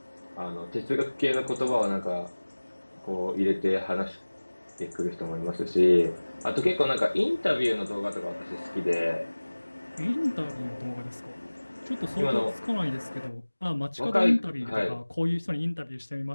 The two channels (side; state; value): both; inverted; correlation -1.00